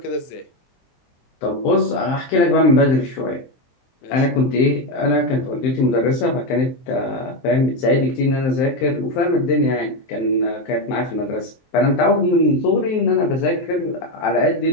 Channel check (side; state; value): right; late; 23 ms